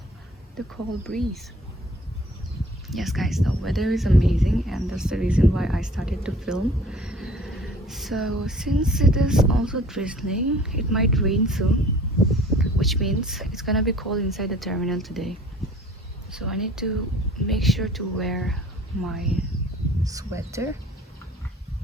the cold breeze. Yes guys, the weather is amazing, and that's the reason why I started to film. So since it is also drizzling, it might rain soon, which means it's gonna be cold inside the terminal today. So I need to make sure to wear my sweater.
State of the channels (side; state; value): both; normal; correlation 0.51